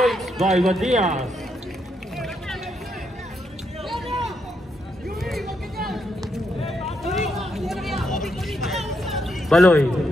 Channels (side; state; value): both; normal; correlation 0.79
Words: by Bandias. Baloy.